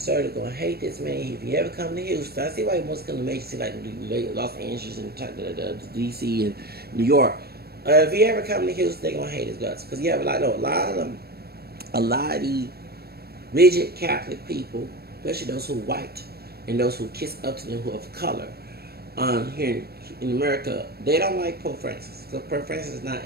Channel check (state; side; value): late; left; 0.46 ms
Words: gonna hate this man if you ever come to Houston. I see why he must come to major cities like Los Angeles and DC and New York. If you ever come to Houston, they gonna hate his guts because you have a lot of the rigid Catholic people, especially those who are white and those who kiss up to them who are of color. Here in America, they don't like Pope Francis. So Pope Francis is not